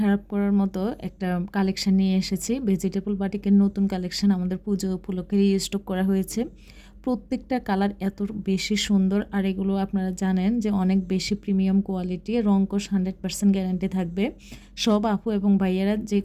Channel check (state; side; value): identical; both; correlation 1.00